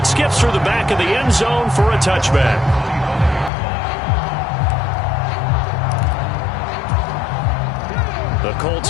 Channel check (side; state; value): right; drops out; at 3.5 s